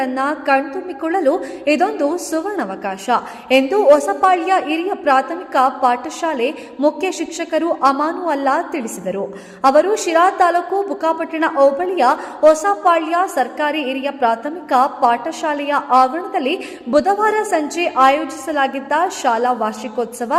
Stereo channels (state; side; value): identical; both; correlation 1.00